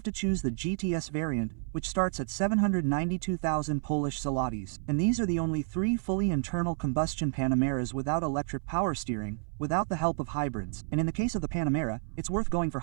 to choose the GTS variant, which starts at 792,000 Polish zlotys. And these are the only 3 fully internal combustion Panameras without electric power steering, without the help of hybrids. And in the case of the Panamera, it's worth going for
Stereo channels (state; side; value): silent; left; 58 dB below the other